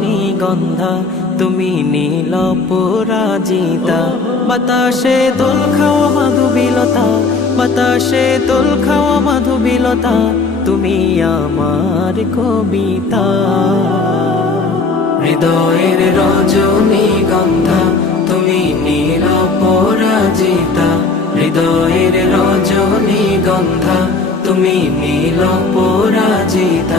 তুমি নীল পরাজিতা। বাতাসে দোল খাওয়া মাধুবিলতা, বাতাসে দোল খাওয়া মাধুবিলতা, তুমি আমার কবিতা। হৃদয়ের রজনীগন্ধা তুমি নীল পরাজিতা, হৃদয়ের রজনীগন্ধা তুমি নীল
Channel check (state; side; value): quieter; right; 3.9 dB